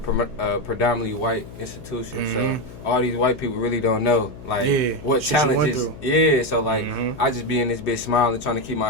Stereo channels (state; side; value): noise; left; hum, 16 dB below the sound